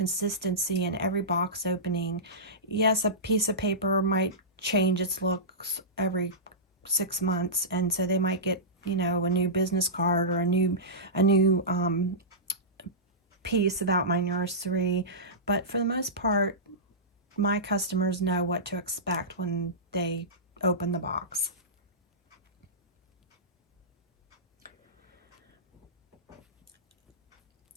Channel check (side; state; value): both; normal; correlation -0.18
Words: in every box opening. Yes, a piece of paper might change its looks every 6 months, and so they might get, a new business card or a new piece about my nursery, but for the most part, my customers know what to expect when they open the box.